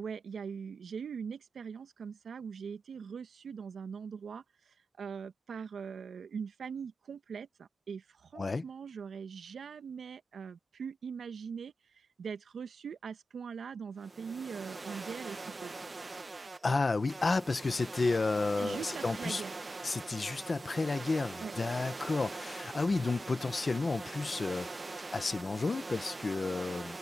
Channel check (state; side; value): normal; both; correlation 0.93